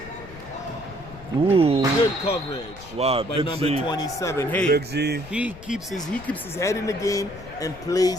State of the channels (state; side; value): noise; left; rumble, 17 dB below the sound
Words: Ooh. Good coverage. Wow, by Big number Z. 27. Hey, Big Z. he keeps his head in the game and